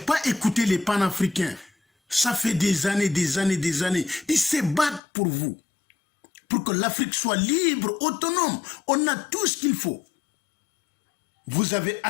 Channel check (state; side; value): drops out; right; at 5.0 s